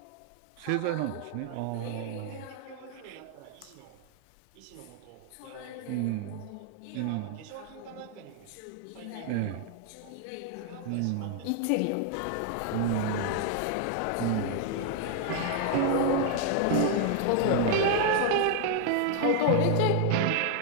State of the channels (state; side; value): different; both; correlation 0.00